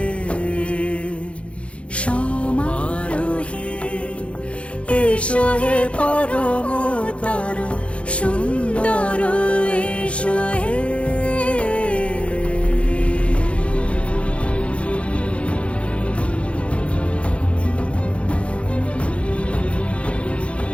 সমারোহে এসো হে পরমতর সুন্দর এসো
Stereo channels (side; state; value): right; late; 0.061 ms